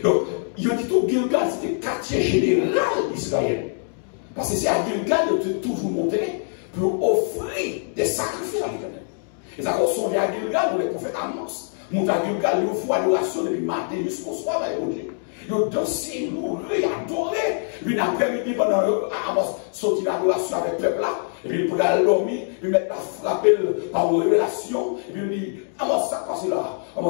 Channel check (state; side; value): silent; right; digital silence